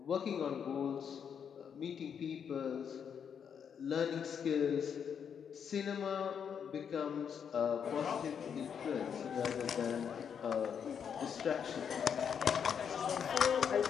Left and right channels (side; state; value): right; quieter; 7.5 dB